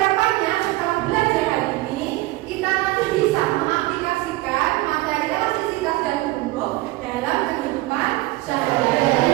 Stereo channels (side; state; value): left; quieter; 19.3 dB